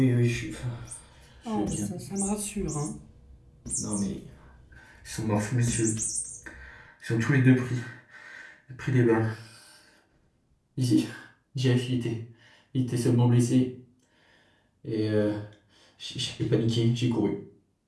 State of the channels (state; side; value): identical; both; correlation 1.00